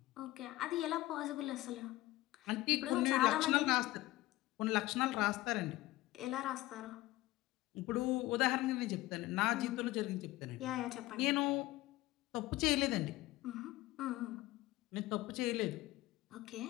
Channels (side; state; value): right; quieter; 17.6 dB